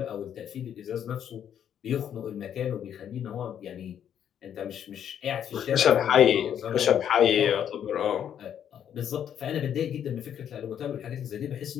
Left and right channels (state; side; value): quieter; right; 9.3 dB